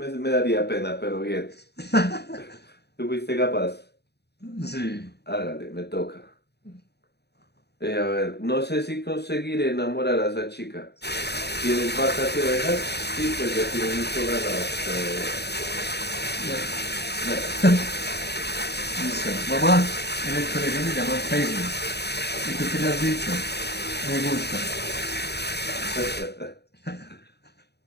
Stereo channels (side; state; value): right; late; 0.48 ms